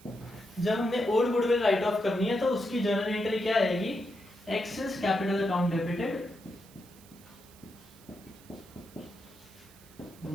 जब हमने ओल्ड गुडविल राइट ऑफ करनी है तो उसकी जर्नल एंट्री क्या आएगी, X is capital account debited,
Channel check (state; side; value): noise; right; hiss, 25 dB below the sound